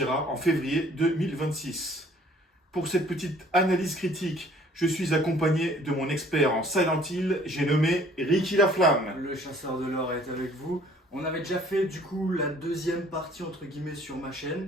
en février 2026. Pour cette petite analyse critique, je suis accompagné de mon expert en Silent Hill, j'ai nommé Ricky Laflamme. Le chasseur de l'or est avec vous. On avait déjà fait du coup la deuxième partie entre guillemets sur ma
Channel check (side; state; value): both; normal; correlation 0.56